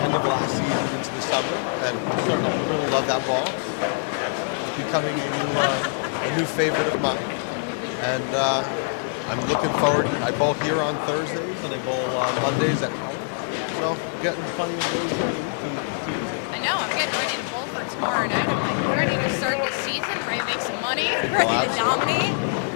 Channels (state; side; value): silent; right; 62 dB below the other